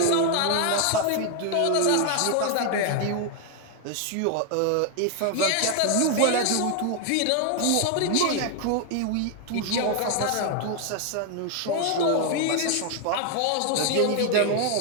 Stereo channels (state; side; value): different; both; correlation 0.00